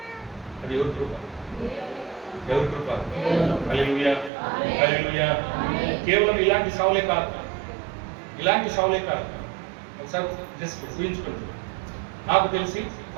అది ఎవరి కృప? హల్లెలూయా, హల్లెలూయా. కేవలం ఇలాంటి సావులే కాదు. ఒకసారి జస్ట్ ఊహించుకుంటుంది. నాకు తెలిసి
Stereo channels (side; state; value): left; drops out; at 4.3 s